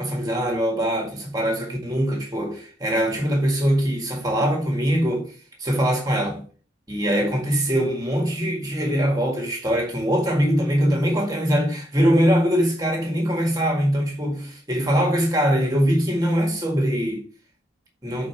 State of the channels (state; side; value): normal; both; correlation 0.78